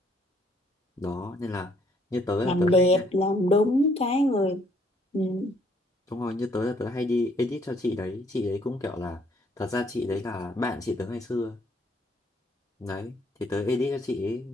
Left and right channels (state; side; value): normal; both; correlation 0.66